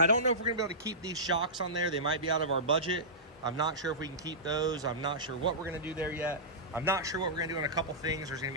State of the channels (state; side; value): normal; both; correlation -0.17